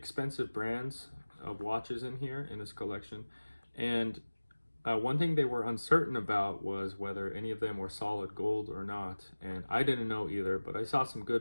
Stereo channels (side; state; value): both; inverted; correlation -1.00